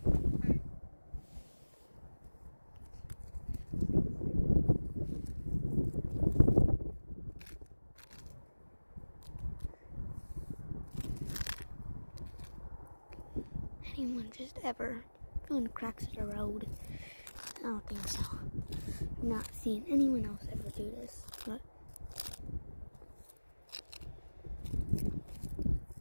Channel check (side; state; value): both; inverted; correlation -1.00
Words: anyone just ever found cracks in the road? I don't think so. I've not seen anyone else ever do this, but